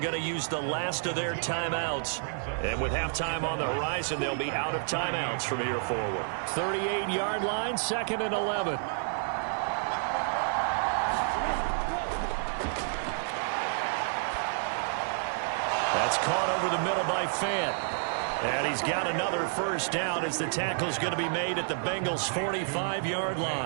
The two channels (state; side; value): silent; left; 58 dB below the other